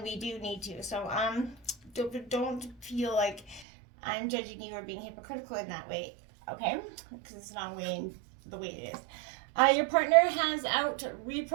we do need to. So don't feel like I'm judging you or being hypocritical in that way, okay? Because it's not the way it is. Your partner has out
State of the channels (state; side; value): drops out; left; at 3.7 s